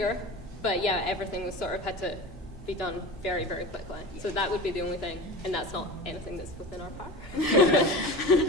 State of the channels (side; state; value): both; normal; correlation 0.32